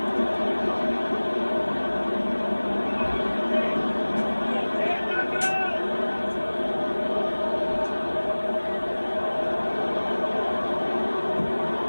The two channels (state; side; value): inverted; both; correlation -1.00